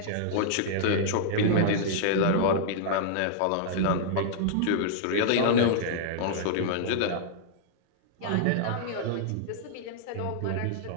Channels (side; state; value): both; different; correlation -0.02